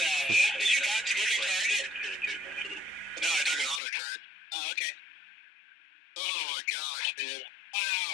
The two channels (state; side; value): drops out; right; at 3.8 s